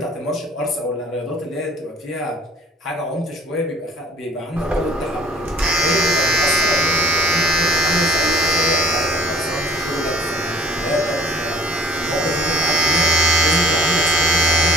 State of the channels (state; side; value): normal; both; correlation 0.52